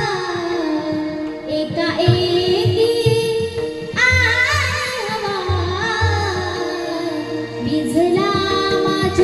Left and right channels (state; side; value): identical; both; correlation 1.00